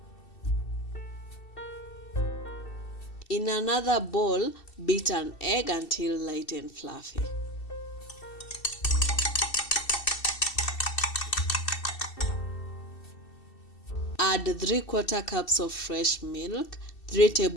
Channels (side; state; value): right; late; 2.7 ms